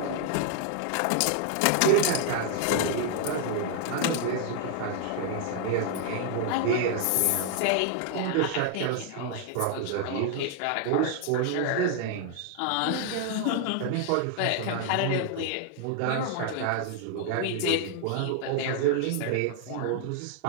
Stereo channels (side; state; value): both; different; correlation 0.00